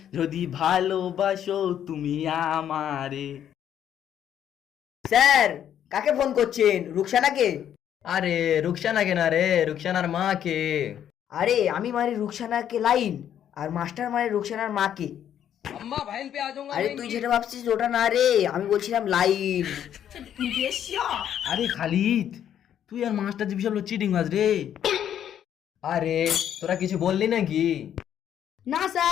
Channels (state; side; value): quieter; right; 9.9 dB